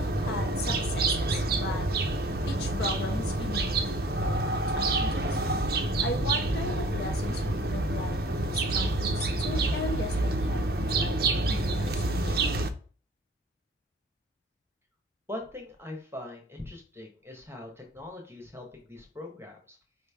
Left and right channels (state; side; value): normal; both; correlation 0.50